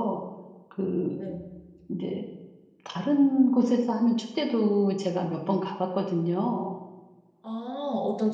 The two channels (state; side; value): identical; both; correlation 1.00